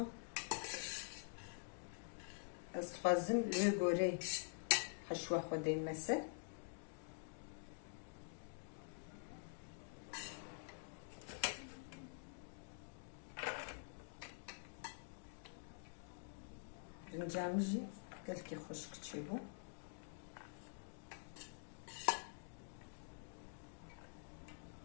استخوازم لوی گوره حشوه خوده مسه رنجامجی قالك خشك تشيبو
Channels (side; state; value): right; silent; digital silence